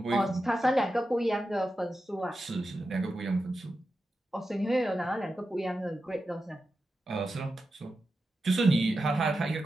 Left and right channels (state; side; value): normal; both; correlation 0.90